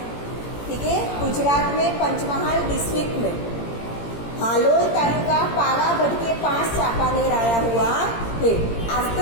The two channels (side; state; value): right; late; 17 ms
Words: ठीक है। गुजरात में पंचमहाल डिस्ट्रिक्ट में हालोल तालुका पावागढ़ के पास चापानेर आया हुआ है।